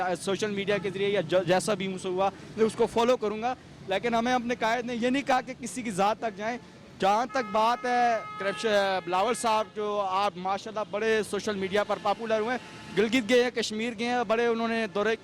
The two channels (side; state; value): both; identical; correlation 1.00